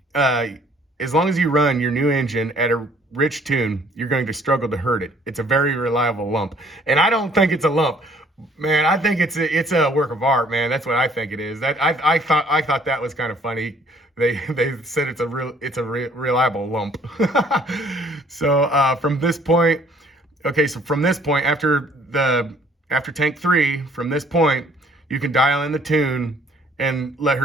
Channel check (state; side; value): normal; both; correlation 0.60